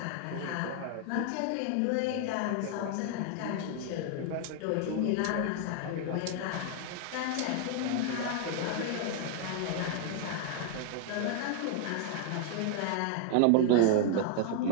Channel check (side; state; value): both; different; correlation 0.00